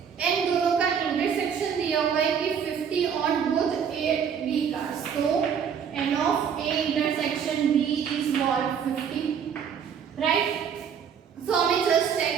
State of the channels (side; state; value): left; quieter; 7.5 dB